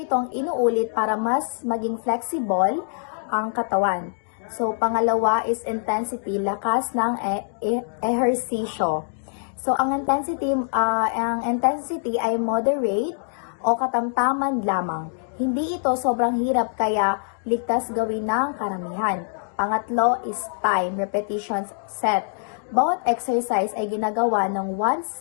inuulit para mas maging flexible ang katawan. So, pangalawa is intensity, lakas ng ehersisyo. So, ang intensity ay moderate o katamtaman lamang. Hindi ito sobrang hirap kaya ligtas gawin ng karamihan. Pangatlo is time, repetitions, set. Bawat exercise ay ginagawa ng 1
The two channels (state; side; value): silent; right; digital silence